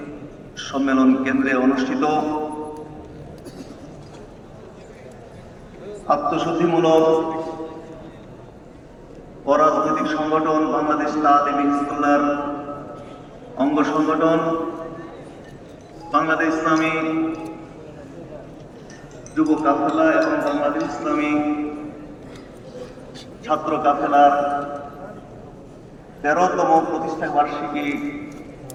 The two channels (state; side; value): identical; both; correlation 1.00